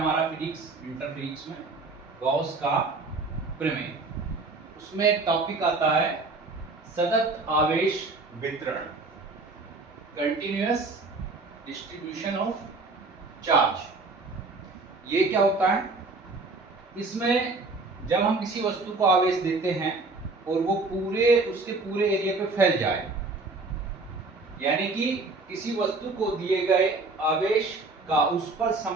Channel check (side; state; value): left; quieter; 3.6 dB